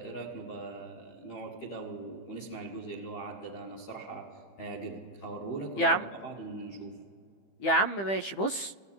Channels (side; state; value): right; late; 15 ms